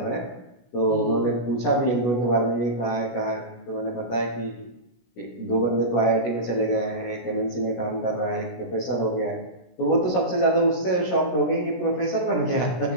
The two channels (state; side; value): late; right; 16 ms